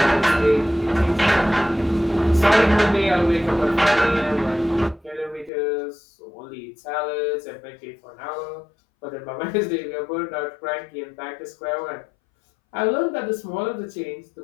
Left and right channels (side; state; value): right; drops out; at 5.5 s